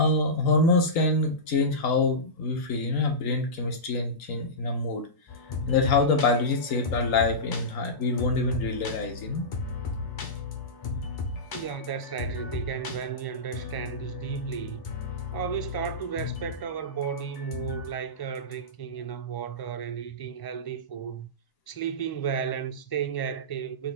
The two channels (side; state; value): right; late; 1.0 ms